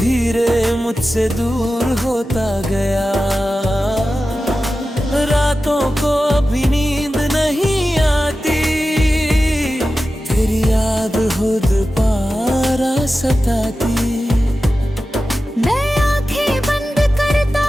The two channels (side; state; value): both; normal; correlation 0.94